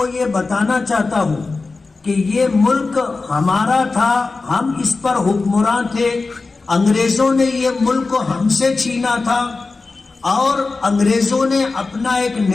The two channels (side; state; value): right; quieter; 3.9 dB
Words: یہ بتانا چاہتا ہوں کہ یہ ملک ہمارا تھا، ہم اس پر حکمراں تھے. انگریزوں نے یہ ملک ہم سے چھینا تھا اور انگریزوں نے اپنا ایک